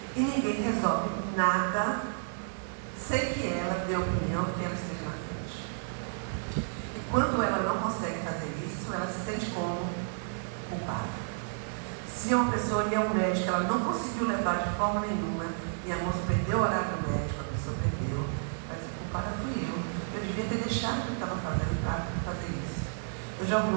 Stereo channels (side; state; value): left; silent; 57 dB below the other